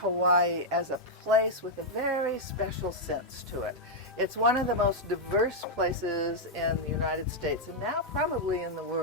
as a place with a very special sense to it. It's one of the most diverse places in the United States, and now probably in the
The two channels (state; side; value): normal; both; correlation -0.03